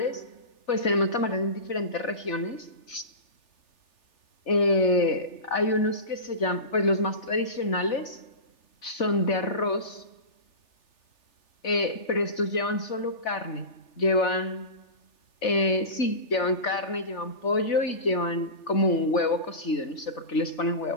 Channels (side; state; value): right; late; 3.4 ms